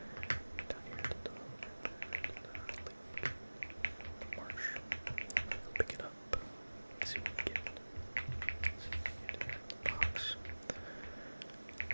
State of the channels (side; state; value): both; inverted; correlation -1.00